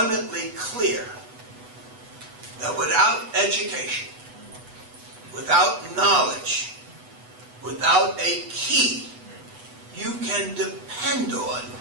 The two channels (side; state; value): left; late; 8.1 ms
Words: clear that without education, without knowledge, without a key, you can depend on